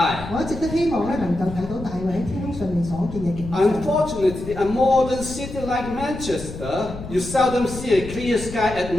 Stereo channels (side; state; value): left; noise; rumble, 11 dB below the sound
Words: 我一直都希望咧能夠睇到大衛喺天空上面所見嘅景象。 Unfortunately, a modern city like Manchester, you seldom see a clear sky at